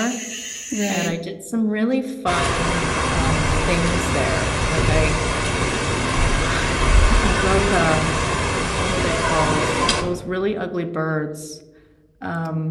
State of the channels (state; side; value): identical; both; correlation 1.00